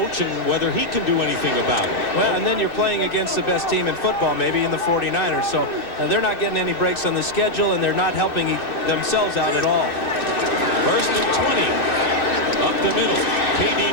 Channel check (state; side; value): late; right; 2.6 ms